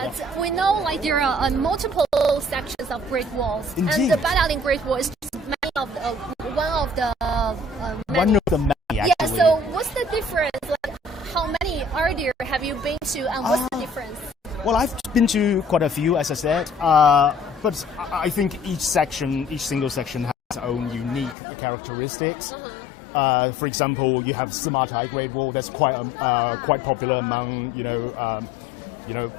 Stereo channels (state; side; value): drops out; right; at 21.4 s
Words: we know like there are multiple sections of Great Walls, Indeed. and the Badaling Great Wall is just one of the many. One of the many, actually. Yeah. So what's the difference? Like, how many are there? Have you been to, and what's the difference? Well, I've been to quite a few, as I said, but I think each single section has its own unique characteristics. For example, you have Simatai Great Wall. That's quite popular among